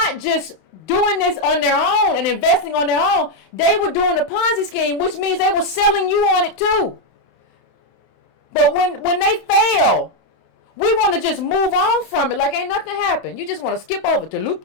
just doing this on their own and investing on their own. They were doing a Ponzi scheme, which means they were selling you on it too. But when they fail, we want to just move on from it like ain't nothing happened. You just want to skip over to loop,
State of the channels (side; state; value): right; late; 31 ms